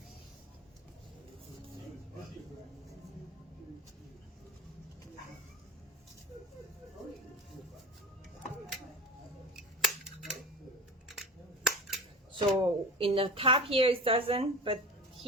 So in the top here it doesn't, but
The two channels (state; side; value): normal; both; correlation 0.32